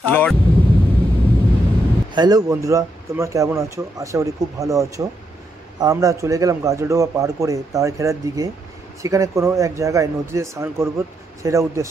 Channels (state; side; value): normal; both; correlation 0.79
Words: হ্যালো বন্ধুরা, তোমরা কেমন আছো? আশা করি খুব ভালো আছো। আমরা চলে গেলাম গাজলডোবা পার করে তারঘেরার দিকে। সেখানে কোনো এক জায়গায় নদীতে স্নান করব, সেটা